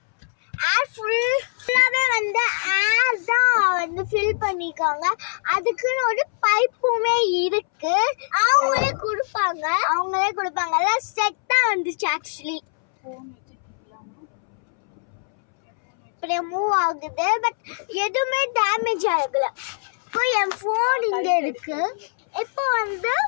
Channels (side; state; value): right; silent; 64 dB below the other